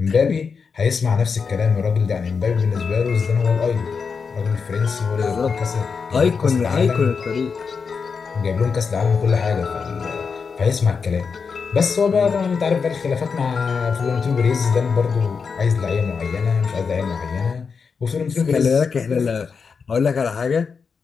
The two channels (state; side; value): quieter; right; 5.5 dB